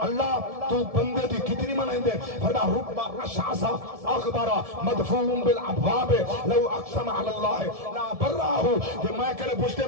اللہ تو بندے دی کتنی منندے فردا ربا اشعصا اخبارا مدفون بالابواب لو اقسم علی اللہ لا براہو. کہ میں کرے پوچھتے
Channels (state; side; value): late; left; 1.7 ms